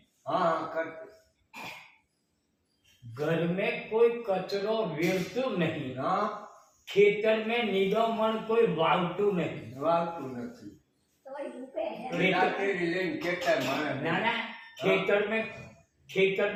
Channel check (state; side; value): identical; both; correlation 1.00